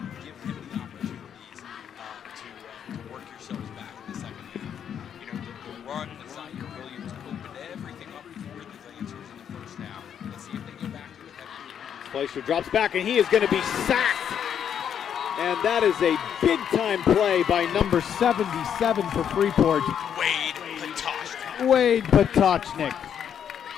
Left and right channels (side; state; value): right; quieter; 8.6 dB